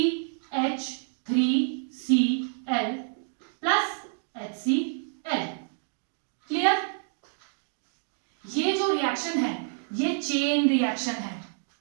प्लस HCl। क्लियर। ये जो रिएक्शन है ये चेन रिएक्शन है,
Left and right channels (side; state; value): left; silent; 59 dB below the other